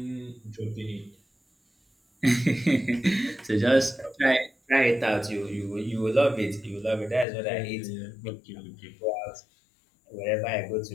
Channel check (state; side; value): drops out; right; at 7.2 s